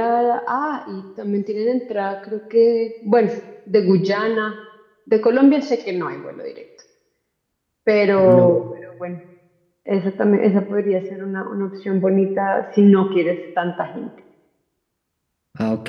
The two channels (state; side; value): identical; both; correlation 1.00